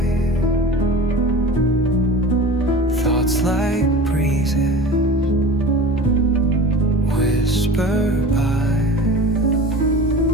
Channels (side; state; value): both; normal; correlation 0.35